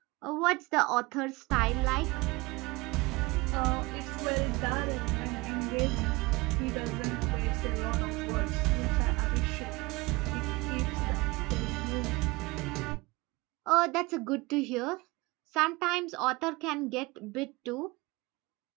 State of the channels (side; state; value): left; quieter; 23.3 dB